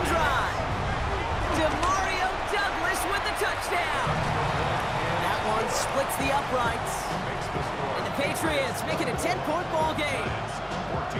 drive. DeMario Douglas with the touchdown. That one splits the uprights. And the Patriots make it a 10-point ball game.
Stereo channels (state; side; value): identical; both; correlation 1.00